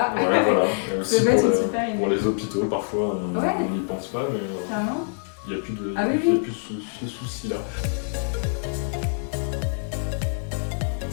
voilà. Et aussi pour les hôpitaux, parfois, on n'y pense pas, mais il n'y a plus de ce souci-là.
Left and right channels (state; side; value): silent; right; digital silence